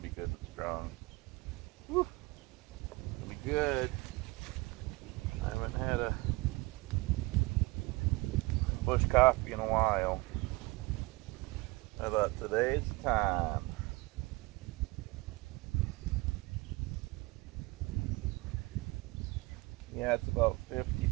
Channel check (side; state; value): left; quieter; 23.8 dB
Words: be good and strong. Whew. Gonna be good. I haven't had a bush coffee in a while. I thought today's the time. Yeah, it's about